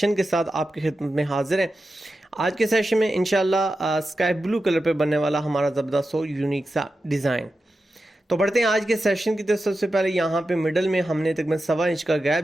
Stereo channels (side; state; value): both; normal; correlation 0.91